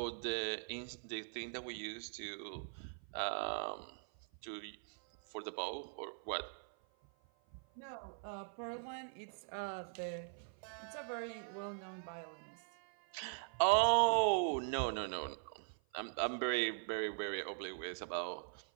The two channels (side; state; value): left; silent; 50 dB below the other